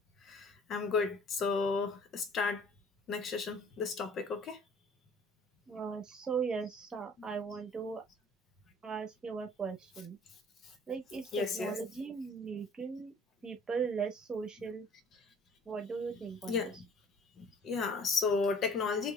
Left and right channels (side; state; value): both; normal; correlation 0.52